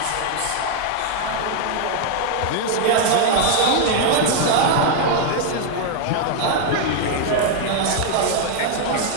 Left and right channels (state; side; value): different; both; correlation 0.00